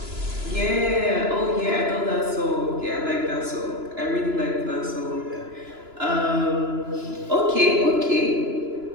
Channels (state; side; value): late; left; 2.9 ms